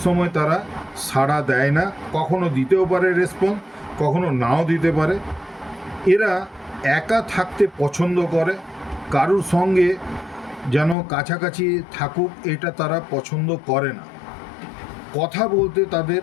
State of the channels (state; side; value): drops out; right; at 11.0 s